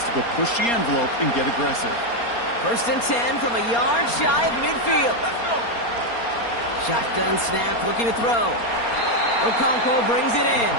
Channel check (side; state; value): right; late; 4.3 ms